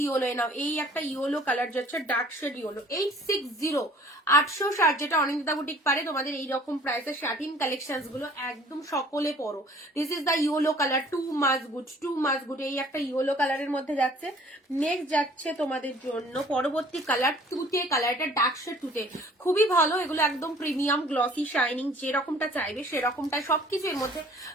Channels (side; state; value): both; normal; correlation 0.52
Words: yellow now. এই একটা ইয়েলো কালার যাচ্ছে, ডার্ক শেড ইয়েলো। 860, 860, যেটা অনিন্দিতা বুটিক পারে তোমাদের এইরকম প্রাইসের শাটিন কালেকশন গুলো একদম সকলে পরো। This is the yellow colour, too much good. এই একটা ইয়েলো কালারের মধ্যে যাচ্ছে। নেক্সট যাচ্ছে তোমাদের জন্য পরবর্তী কালার তুতে কালার, এটা ডার্ক শেড তুতে, খুবই ভালো। এগুলো একদম প্রিমিয়াম গ্লসি শাইনিং, যেরকমটা চাইবে সেরকমটা সবকিছু এর মধ্যে